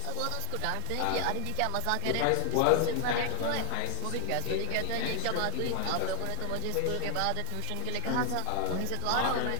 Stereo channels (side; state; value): both; different; correlation 0.01